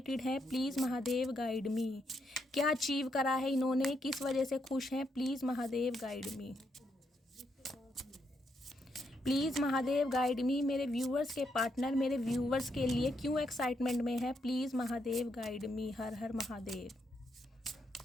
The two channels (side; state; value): both; normal; correlation 0.78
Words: हैं, प्लीज़ महादेव गाइड मी। क्या अचीव करा है इन्होंने, किस वजह से खुश हैं, please Mahadev guide me. Please Mahadev guide मी। मेरे व्यूवर्स के पार्टनर मेरे व्यूवर्स के लिए क्यों एक्साइटमेंट में है, प्लीज़ महादेव गाइड मी। हर हर Mahadev.